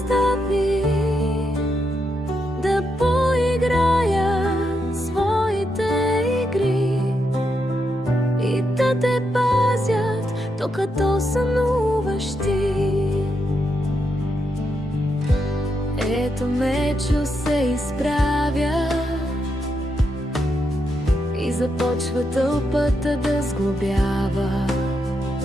да поиграят своите докато сънуваш ти. Ето Мечо се изправя и започва тълпата да сглобява.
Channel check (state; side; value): normal; both; correlation 0.82